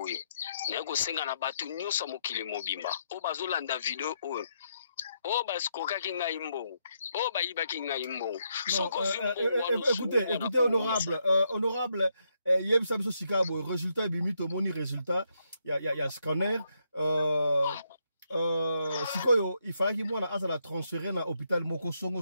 na ko senga na batu nyoso mokili mobimba o bazolanda video oyo o baskoka kinga imbo o bayiba kinga imbo soko zimbo. Écoutez honorable yeb samso sikabo résultat bimi to moni résultat ya scanner sikoyo il fallait que mwana azala transférer na hôpital moko songo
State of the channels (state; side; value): inverted; both; correlation -0.78